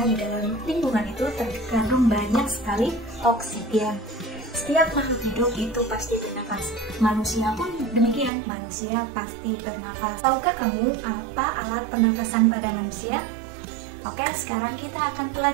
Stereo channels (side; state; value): left; drops out; at 8.3 s